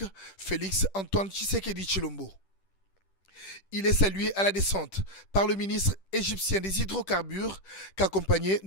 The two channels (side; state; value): right; late; 10 ms